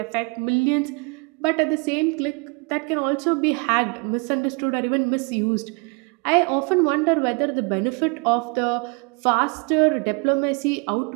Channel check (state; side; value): quieter; left; 31.5 dB